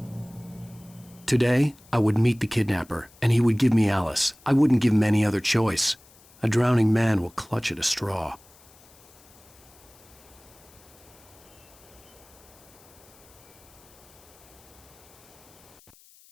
Today, I would meet the kidnapper, and he would give me Alice. I wouldn't give him any other choice. A drowning man will clutch at a straw.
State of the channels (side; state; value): left; noise; hiss, 26 dB below the sound